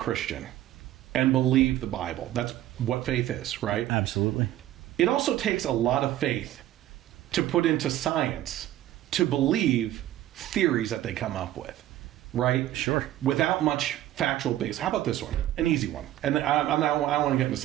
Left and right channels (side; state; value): left; quieter; 13.5 dB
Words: and believe the Bible. That's what faith is, right? Absolutely. It also takes a lot of faith to put into science to believe theories that they come up with, right? Sure. Without much factual base. How about this one? An easy one. And I don't want to get into